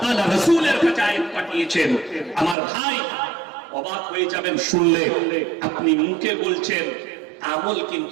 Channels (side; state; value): left; drops out; at 2.6 s